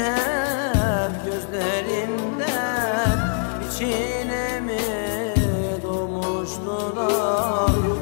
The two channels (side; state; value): right; silent; 56 dB below the other